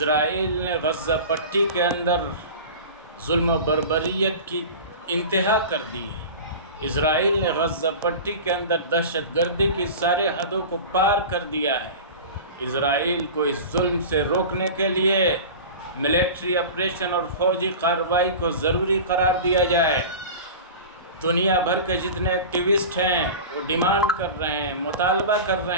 نے غزہ پٹی کے اندر ظلم و بربریت کی انتہا کر دی ہے۔ اسرائیل نے غزہ پٹی کے اندر دہشت گردی کی سارے حدوں کو پار کر دیا ہے۔ اسرائیل کو اس ظلم سے روکنے کے لیے ملٹری آپریشن اور فوجی کارروائی کو ضروری قرار دیا جائے۔ دنیا بھر کے جتنے ایکٹیوسٹ ہیں وہ ڈیمانڈ کر رہے ہیں، مطالبہ کر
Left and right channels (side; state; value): both; inverted; correlation -0.33